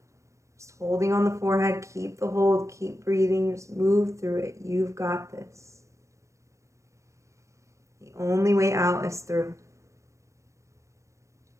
Just holding on the forehead, keep the hold, keep breathing, just move through it. You've got this. The only way out is through.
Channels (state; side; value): late; left; 0.15 ms